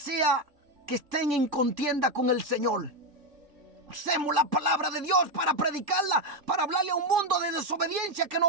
que estén en contienda con el Señor. Usemos la palabra de Dios para predicarla, para hablarle a un mundo de desobediencia que no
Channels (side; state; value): left; late; 3.5 ms